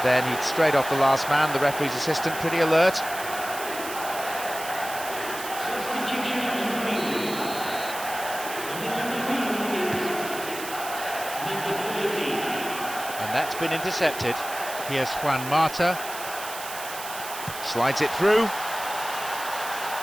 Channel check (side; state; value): right; noise; hiss, 10 dB below the sound